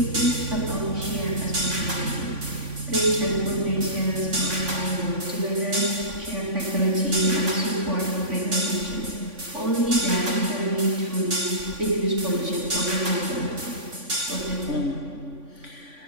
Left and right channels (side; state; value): left; late; 3.5 ms